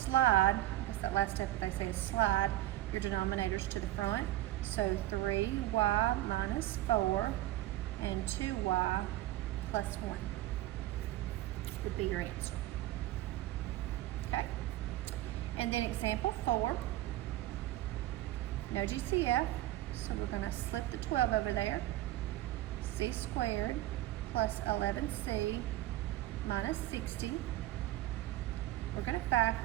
that's that last step they say is slide your denominators to the front. So 3y minus 4 and 2y plus 1 would be your answer. Okay, and then example 4, no GCF, so we're going to slip the 12 over there. C squared plus 11c minus 60. We're going to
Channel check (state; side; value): quieter; left; 15.1 dB